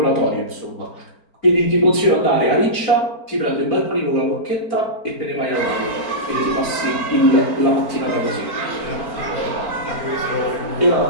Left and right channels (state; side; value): late; right; 4.4 ms